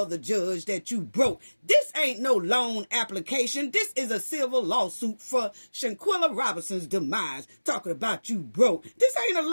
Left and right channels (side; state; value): both; inverted; correlation -1.00